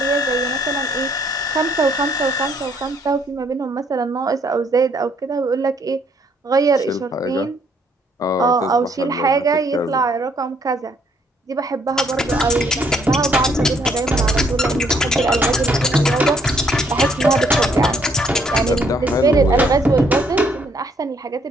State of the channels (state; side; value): normal; both; correlation 0.67